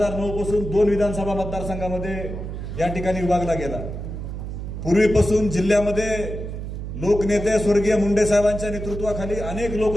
पासून 2 विधानसभा मतदारसंघामध्ये या ठिकाणी विभागला गेला. पूर्वीपासून जिल्ह्यामध्ये लोकनेते स्वर्गीय मुंडे साहेबांच्या नेतृत्वाखाली अनेक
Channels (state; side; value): noise; right; hum, 7 dB below the sound